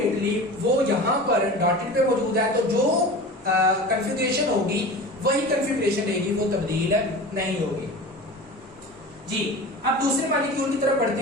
वो यहाँ पर डॉटेड पे मौजूद है, तो जो कॉन्फ़िगरेशन होगी वही कॉन्फ़िगरेशन रहेगी, वो तब्दील नहीं होगी जी। अब दूसरे मॉलिक्यूल की तरफ बढ़ते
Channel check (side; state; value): right; noise; hum, 29 dB below the sound